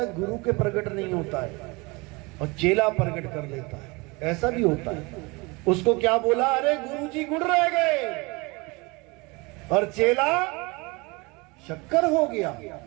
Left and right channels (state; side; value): quieter; left; 26.1 dB